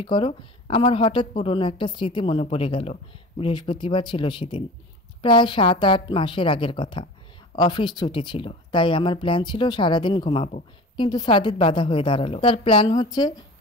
করো? আমার হঠাৎ পুরনো একটা স্মৃতি মনে পড়ে গেল। বৃহস্পতিবার ছিল সেদিন, প্রায় 7-8 মাসের আগের কথা। অফিস ছুটি ছিল, তাই আমার প্ল্যান ছিল সারাদিন ঘুমাবো। কিন্তু সাদিত বাধা হয়ে দাঁড়ালো। তার প্ল্যান হচ্ছে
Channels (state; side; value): normal; both; correlation 0.37